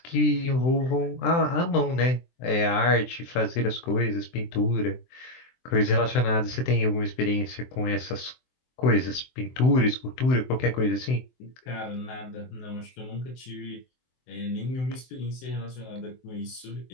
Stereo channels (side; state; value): right; late; 23 ms